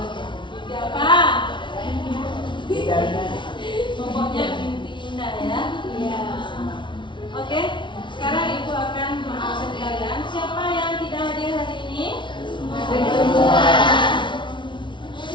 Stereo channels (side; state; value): right; late; 0.24 ms